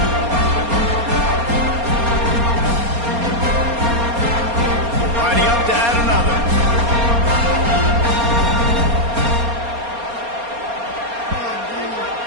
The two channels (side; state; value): left; late; 4.3 ms